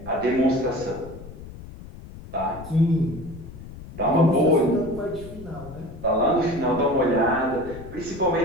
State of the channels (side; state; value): left; noise; rumble, 15 dB below the sound